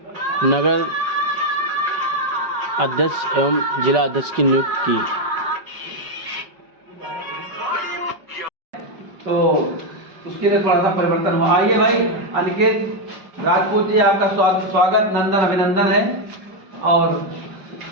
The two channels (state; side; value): late; left; 5.2 ms